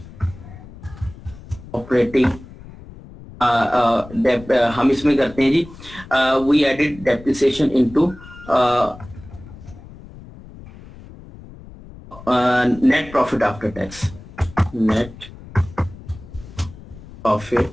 ऑपरेटिंग हम इसमें करते हैं जी, we added depreciation into net profit after tax, net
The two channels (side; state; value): left; noise; rumble, 18 dB below the sound